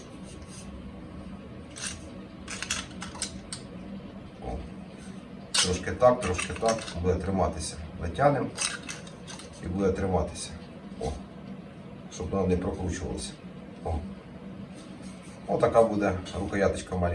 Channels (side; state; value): both; identical; correlation 1.00